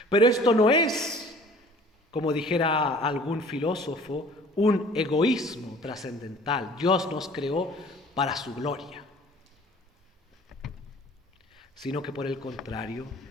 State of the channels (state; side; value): normal; both; correlation 0.49